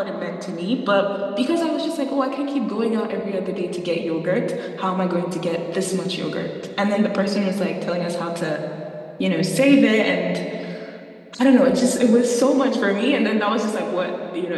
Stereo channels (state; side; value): identical; both; correlation 1.00